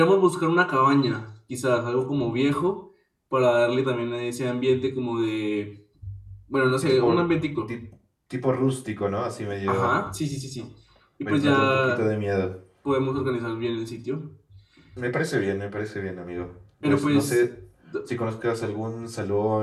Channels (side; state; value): both; identical; correlation 1.00